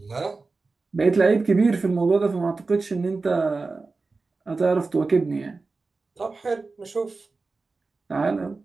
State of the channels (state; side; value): quieter; left; 3.9 dB